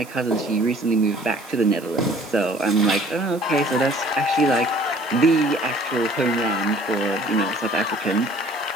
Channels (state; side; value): noise; right; hiss, 21 dB below the sound